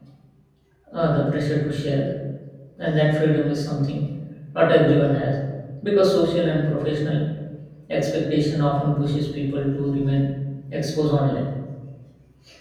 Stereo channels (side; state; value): both; identical; correlation 1.00